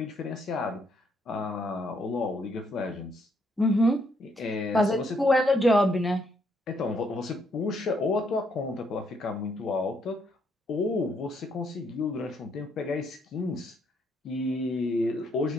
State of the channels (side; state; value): both; normal; correlation 0.72